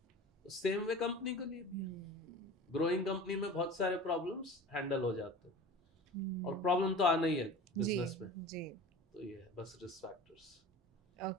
सेम वे कंपनी के लिए भी, ग्रोइंग कंपनी में बहुत सारे प्रॉब्लम्स हैंडल हो जाते हैं और प्रॉब्लम तो आना ही है बिजनेस में जी। तो ये है बस रिस्क फैक्टर्स।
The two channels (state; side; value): normal; both; correlation 0.37